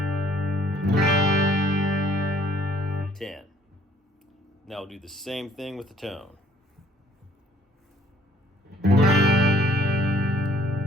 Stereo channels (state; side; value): normal; both; correlation 0.60